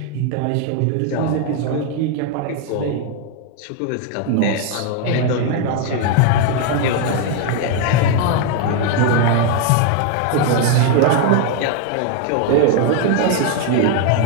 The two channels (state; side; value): different; both; correlation 0.01